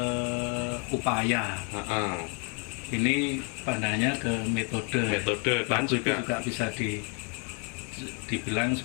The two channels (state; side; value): quieter; right; 34.2 dB